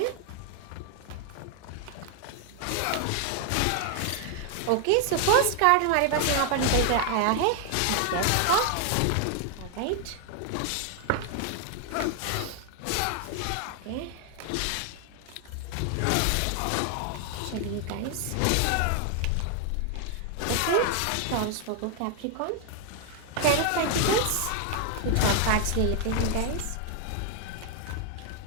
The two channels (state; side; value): different; both; correlation 0.00